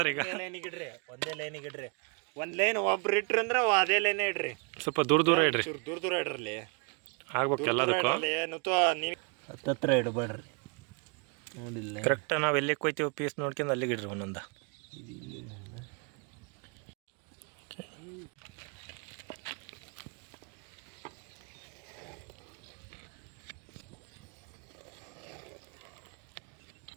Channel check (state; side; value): quieter; left; 36.1 dB